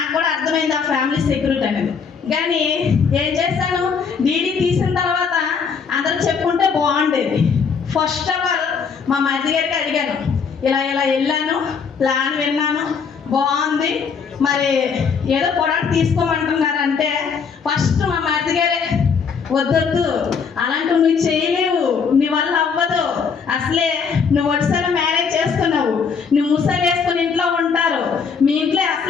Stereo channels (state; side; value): quieter; right; 6.0 dB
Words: కూడా అర్థమైంది ఆ ఫ్యామిలీ సెక్యూరిటీ అనేది. కానీ ఏం చేస్తాను, డీడీ తీసిన తర్వాత అందరూ చెప్పుకుంటే బాగుండేది. ఫస్ట్ ఆఫ్ ఆల్ మా మరిది గారికి అడిగాను, ఇలా వెళ్ళాను, ప్లాన్ విన్నాను, బాగుంది, మరి ఏదో ప్రొడక్ట్ తీసుకోమంటున్నారంటే ఫస్ట్ మా మరిది గారే, వద్దొద్దు అలాంటివి నువ్వు చేయలేవు, నీ వల్ల అవ్వదు, అసలే నువ్వు ఒకసారి మ్యారేజ్ చేసుకున్నావు, నువ్వు ముసలు వేసుకుని ఇంట్లో ఉంటారు, మీ ఇంట్లో